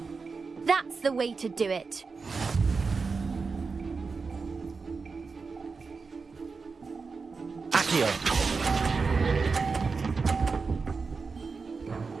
That's the way to do it. Accio.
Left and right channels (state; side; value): quieter; left; 4.7 dB